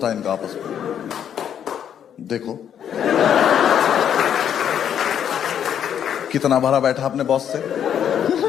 है इनका आपस में। देखो कितना भरा बैठा अपने बॉस से।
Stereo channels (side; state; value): right; quieter; 9.1 dB